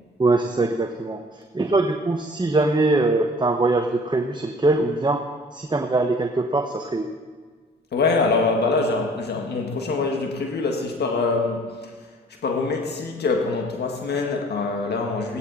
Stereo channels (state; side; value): normal; both; correlation 0.52